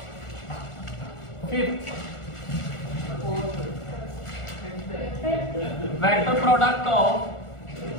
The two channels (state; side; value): late; right; 1.4 ms